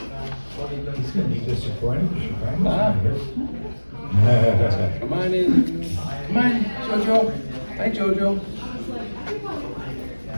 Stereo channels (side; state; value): both; inverted; correlation -1.00